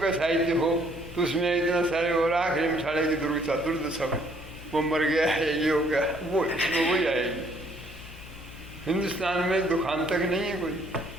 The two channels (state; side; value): noise; left; hum, 16 dB below the sound